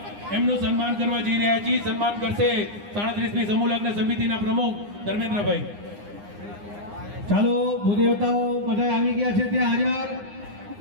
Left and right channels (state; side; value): late; left; 9.8 ms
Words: એમનું સન્માન કરવા જઈ રહ્યા છીએ. સન્માન કરશે 37મી સમૂહ લગ્ન સમિતિના પ્રમુખ ધર્મેન્દ્રભાઈ. ચાલો ભૂદેવતાઓ બધા આવી ગયા છે ત્યાં હાજર.